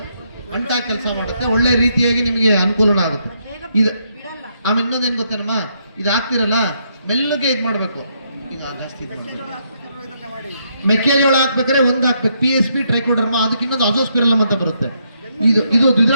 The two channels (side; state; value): both; inverted; correlation -0.76